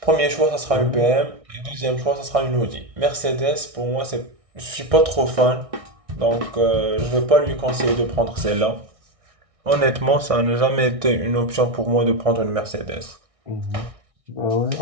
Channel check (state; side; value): late; left; 1.6 ms